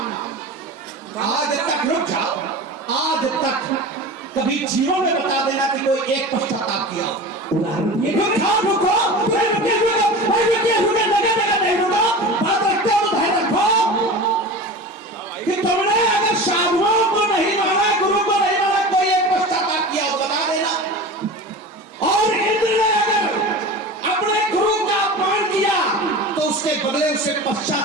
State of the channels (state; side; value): normal; both; correlation 0.32